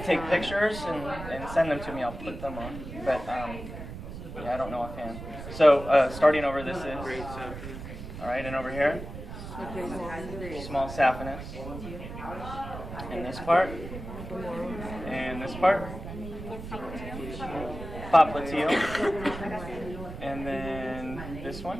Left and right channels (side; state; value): right; noise; rumble, 10 dB below the sound